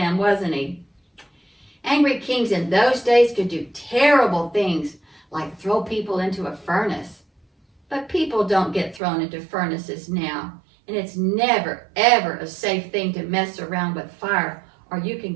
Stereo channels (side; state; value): left; drops out; at 9.0 s